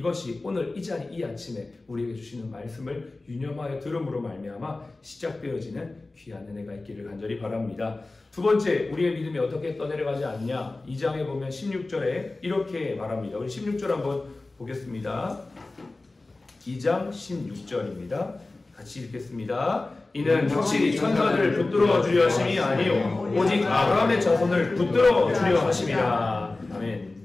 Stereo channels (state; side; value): quieter; right; 3.2 dB